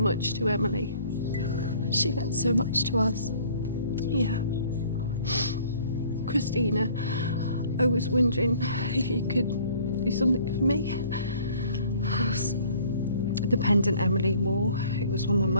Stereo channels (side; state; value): both; inverted; correlation -0.54